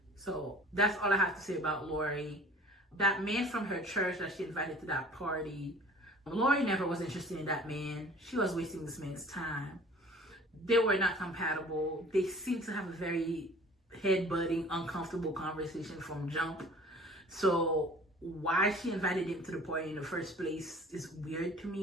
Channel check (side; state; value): both; normal; correlation 0.47